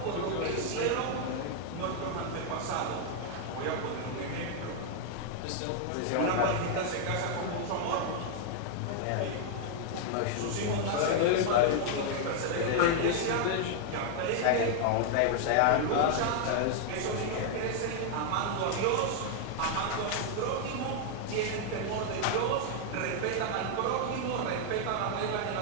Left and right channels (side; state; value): both; different; correlation 0.00